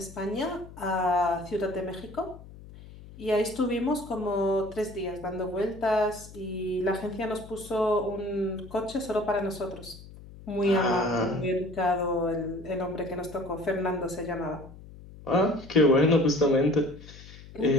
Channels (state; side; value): noise; left; hum, 18 dB below the sound